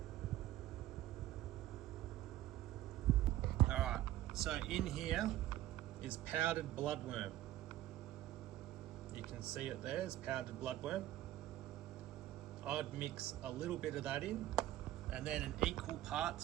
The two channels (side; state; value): left; quieter; 14.3 dB